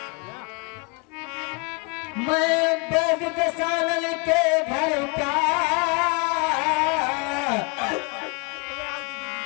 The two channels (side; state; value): right; quieter; 30.4 dB